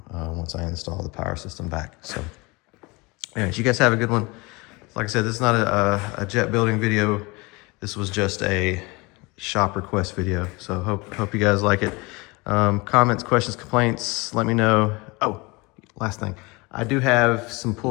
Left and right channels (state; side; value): quieter; right; 25.6 dB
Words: once I install the power system back. So anyways, you guys have a good one. Like I said, this is not a jet building video. This was just a shop request video. So hope you guys like it. Comments, questions, complaints, let me know. Oh, last thing. I do have some